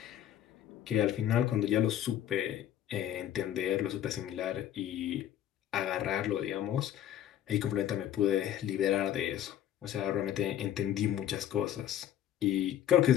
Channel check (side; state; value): right; quieter; 11.1 dB